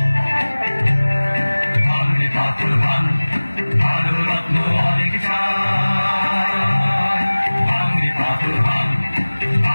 ভাঙে পাথর ভাঙ, ভালো রত্ন অনেক চাই। ভাঙে পাথর ভাঙ,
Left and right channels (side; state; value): both; inverted; correlation -1.00